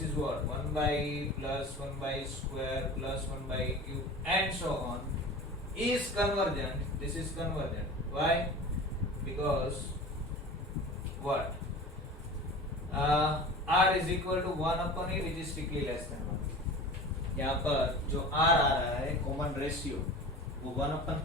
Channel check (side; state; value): both; normal; correlation 0.36